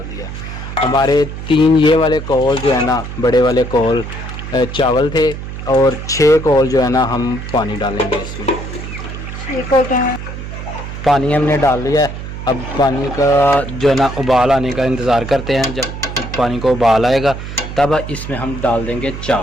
दिया। हमारे 3 ये वाले कौल जो है ना बड़े वाले कौल चावल थे और 6 कौल जो है ना हम पानी डालेंगे इसमें। पानी हमने डाल लिया है। अब पानी का जो है ना उबाल आने का इंतज़ार करते हैं। जब पानी को उबाल आएगा तब इसमें हम डाल देंगे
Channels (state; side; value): noise; right; hum, 9 dB below the sound